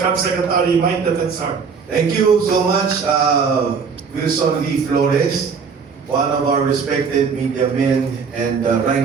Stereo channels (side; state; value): left; quieter; 5.7 dB